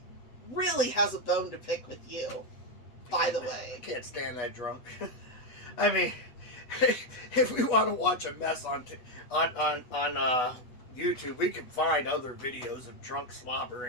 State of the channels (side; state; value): right; late; 8.1 ms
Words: really has a bone to pick with you. By the I way, can't stand that drunk. I mean, if we want to watch a mess on YouTube, we can find other videos of drunk slobber